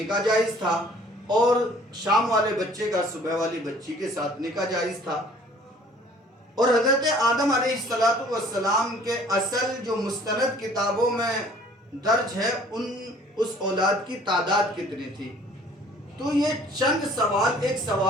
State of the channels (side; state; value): both; normal; correlation 0.54